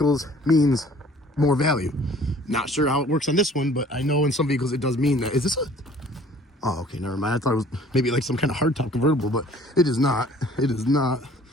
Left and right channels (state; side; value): normal; both; correlation 0.53